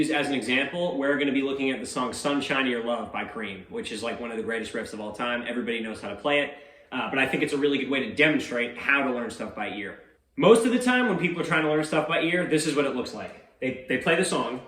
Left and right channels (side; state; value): both; identical; correlation 1.00